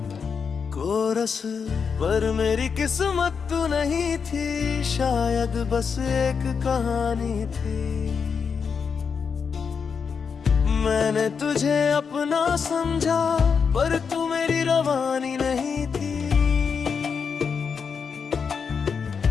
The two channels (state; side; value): quieter; right; 6.0 dB